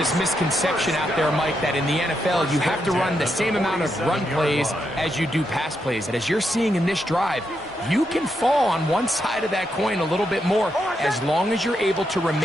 misconception out there, Mike, that in the NFL you have to run the same amount of run plays as you do pass plays. And as you're seeing in this drive, you can fall on one side of that coin a little bit more as long as you're able to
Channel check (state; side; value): normal; both; correlation 0.82